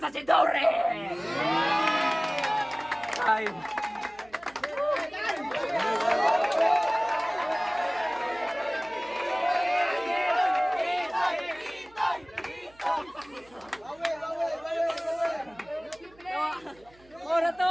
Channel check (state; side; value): noise; right; hum, 28 dB below the sound